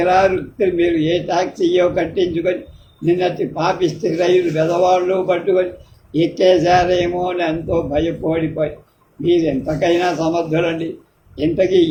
మీరు ఏ టాక్సీయో కట్టించుకొని నిన్నటి పాపిస్తే రైలు వెదవాళ్ళు పట్టుకొని ఎక్కేశారేమో అని ఎంతో భయపడిపోయి. మీరు ఎంతకైనా సమర్థులండి. ఇంతకీ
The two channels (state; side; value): identical; both; correlation 1.00